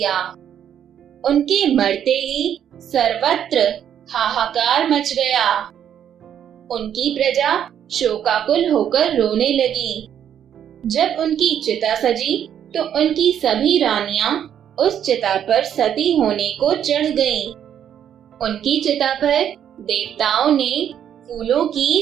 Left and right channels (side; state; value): left; quieter; 9.5 dB